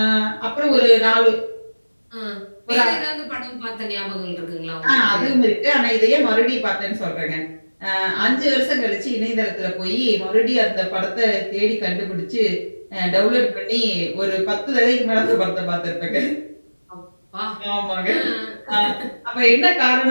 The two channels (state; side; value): inverted; both; correlation -1.00